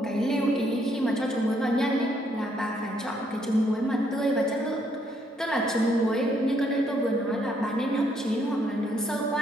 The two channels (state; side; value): normal; both; correlation 0.71